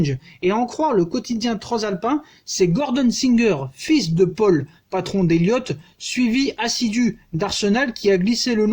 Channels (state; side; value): identical; both; correlation 1.00